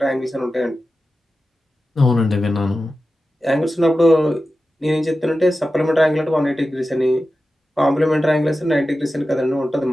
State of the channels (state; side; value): normal; both; correlation 0.93